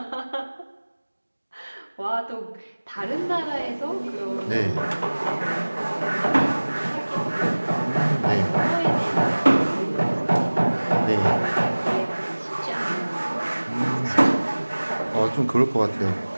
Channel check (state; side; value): inverted; both; correlation -1.00